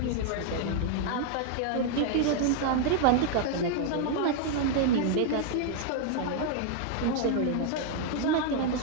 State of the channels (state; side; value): different; both; correlation 0.00